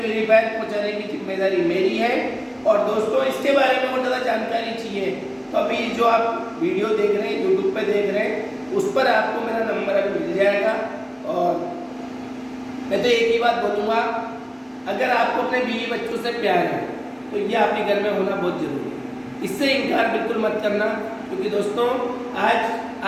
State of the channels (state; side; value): identical; both; correlation 1.00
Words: पहुंचाने की जिम्मेदारी मेरी है। और दोस्तों, इसके बारे में और ज़्यादा जानकारी चाहिए तो अभी जो आप वीडियो देख रहे हैं, यूट्यूब पे देख रहे हैं, उस पर आपको मेरा नंबर अभी मिल जाएगा। और मैं तो एक ही बात बोलूँगा, अगर आपको अपने बीवी बच्चों से प्यार है तो ये आपके घर में होना बहुत जरूरी है। इससे इनकार बिल्कुल मत करना, क्योंकि दोस्तों आज